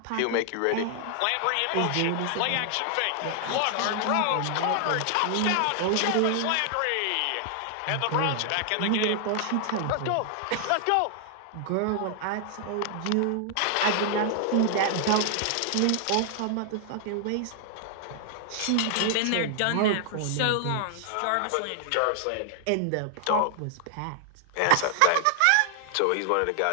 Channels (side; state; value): both; different; correlation 0.00